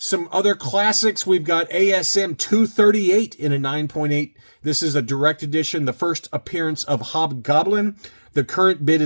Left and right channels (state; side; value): inverted; both; correlation -1.00